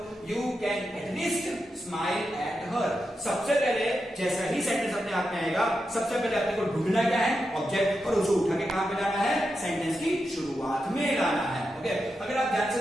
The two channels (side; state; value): both; normal; correlation 0.88